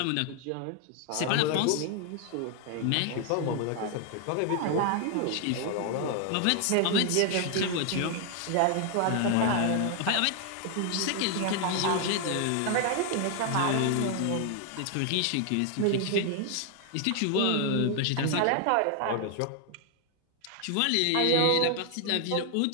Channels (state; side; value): different; both; correlation 0.00